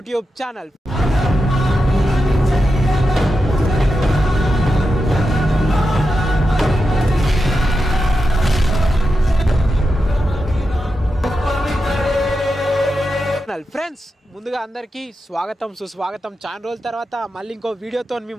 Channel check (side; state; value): both; normal; correlation 0.89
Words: channel. Friends ముందుగా అందరికీ స్వాగతం సుస్వాగతం. చాలా రోజుల తర్వాత మళ్ళీ ఇంకో వీడియోతో మీ